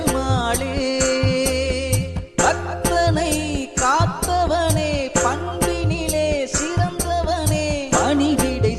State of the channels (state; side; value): identical; both; correlation 1.00